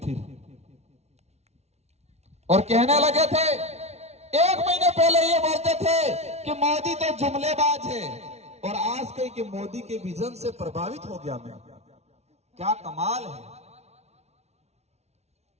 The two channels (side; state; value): left; late; 0.31 ms